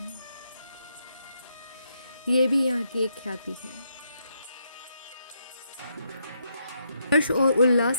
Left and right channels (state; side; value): inverted; both; correlation -0.78